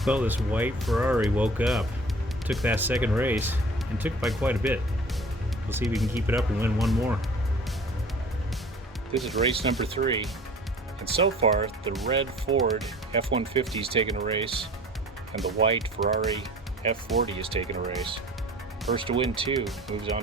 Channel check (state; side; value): normal; both; correlation 0.45